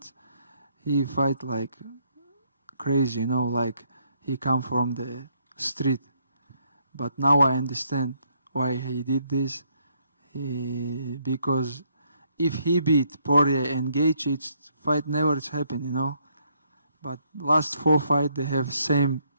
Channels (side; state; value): both; inverted; correlation -0.71